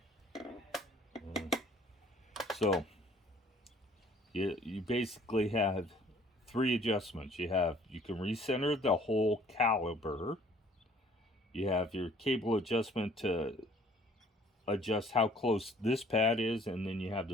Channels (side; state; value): both; normal; correlation 0.56